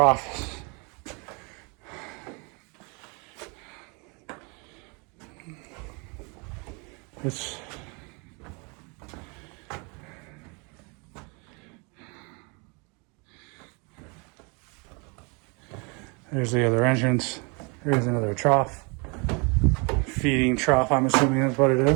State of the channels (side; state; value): left; quieter; 31.8 dB